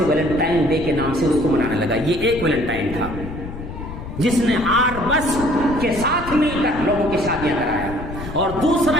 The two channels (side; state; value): left; noise; rumble, 10 dB below the sound